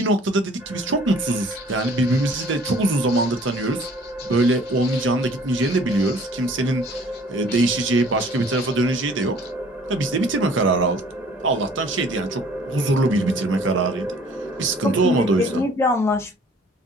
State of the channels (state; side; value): normal; both; correlation 0.54